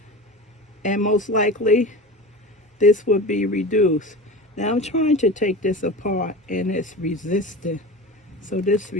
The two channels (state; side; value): normal; both; correlation 0.30